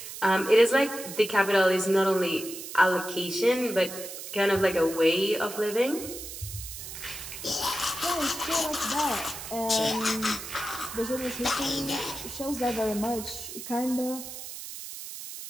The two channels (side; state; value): right; noise; hiss, 10 dB below the sound